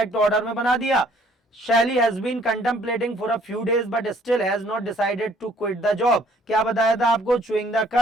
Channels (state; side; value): normal; both; correlation 0.61